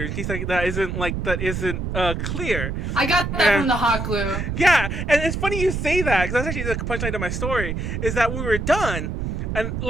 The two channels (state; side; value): noise; right; rumble, 3 dB below the sound